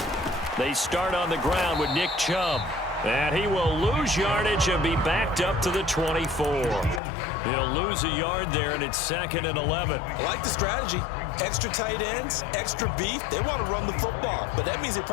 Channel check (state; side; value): drops out; right; at 7.0 s